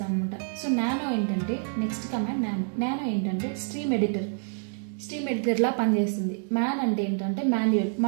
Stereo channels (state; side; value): silent; left; 60 dB below the other